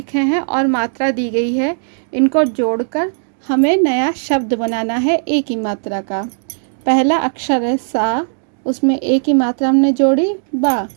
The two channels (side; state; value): left; silent; digital silence